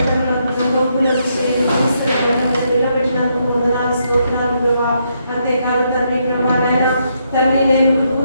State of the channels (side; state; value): both; inverted; correlation -0.77